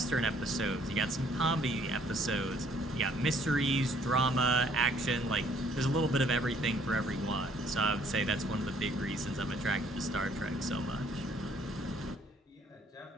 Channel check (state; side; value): normal; both; correlation 0.63